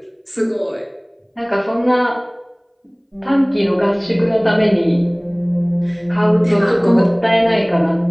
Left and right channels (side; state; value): both; identical; correlation 1.00